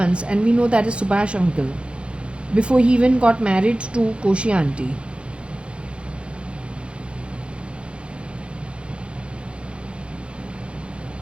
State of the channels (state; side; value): late; left; 0.057 ms